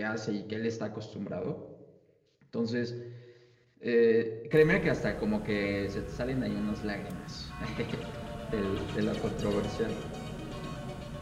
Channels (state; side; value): identical; both; correlation 1.00